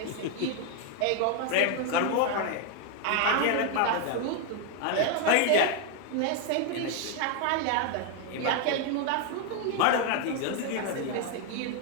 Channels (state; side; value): different; both; correlation 0.00